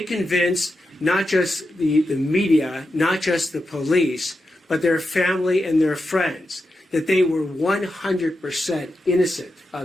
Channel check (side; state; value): both; normal; correlation 0.88